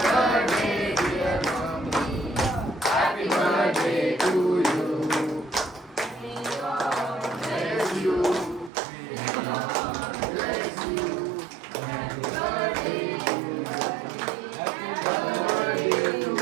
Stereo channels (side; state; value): left; drops out; at 8.7 s